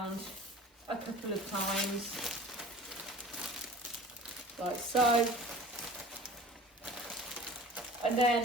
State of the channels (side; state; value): both; normal; correlation 0.42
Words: a couple of times, like so, and